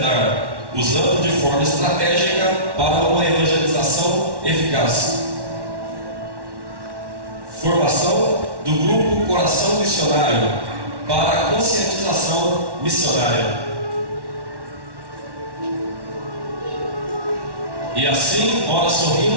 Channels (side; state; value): left; late; 1.1 ms